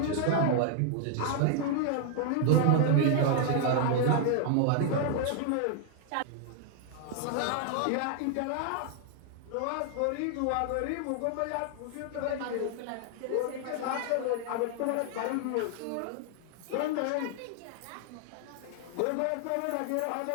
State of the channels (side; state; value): both; different; correlation 0.00